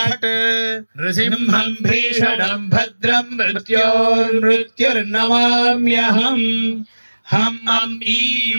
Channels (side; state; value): both; inverted; correlation -1.00